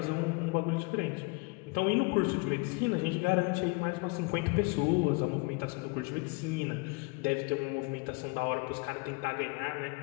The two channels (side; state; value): right; quieter; 29.0 dB